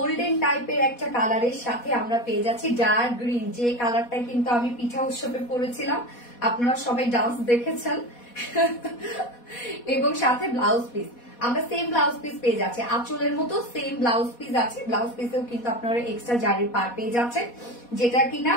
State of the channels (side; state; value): right; late; 4.1 ms